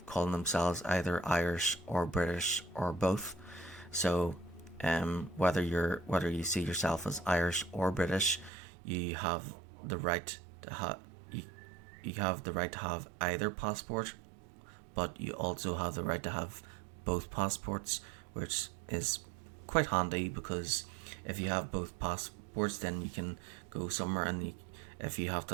calling themselves either Irish or British or both. So whether you see yourself as Irish or British, you have the right to have either passport, but you also have the right to have both passports, which is quite handy, because if you have both passports, then you can go somewhere, and if you have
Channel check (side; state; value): left; drops out; at 8.5 s